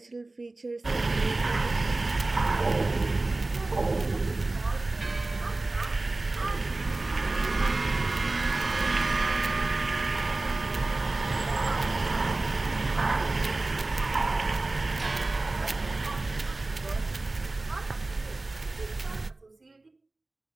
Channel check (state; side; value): quieter; left; 3.1 dB